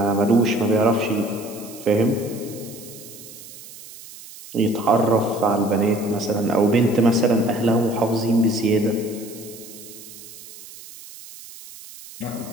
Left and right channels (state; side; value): noise; right; hiss, 17 dB below the sound